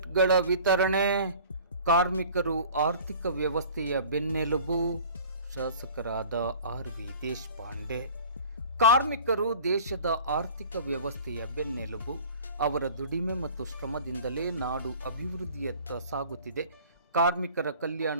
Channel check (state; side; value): inverted; both; correlation -0.45